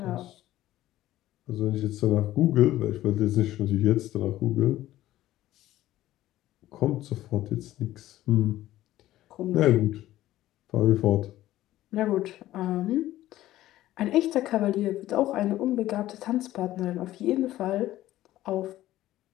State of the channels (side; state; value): right; quieter; 14.7 dB